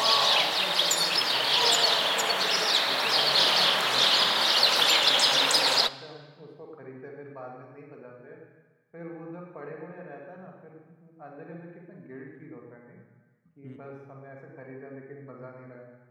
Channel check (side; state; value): both; identical; correlation 1.00